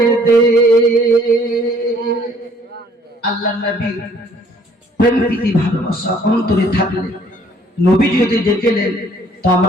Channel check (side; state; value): both; normal; correlation 0.60